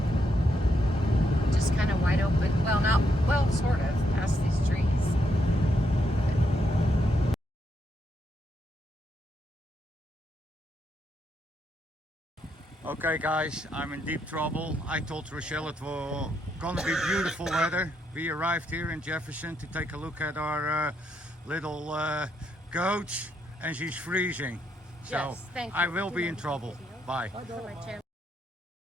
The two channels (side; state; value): both; normal; correlation 0.78